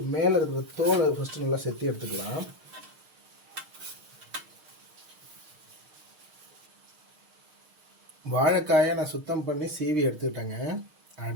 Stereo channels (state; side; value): late; left; 6.5 ms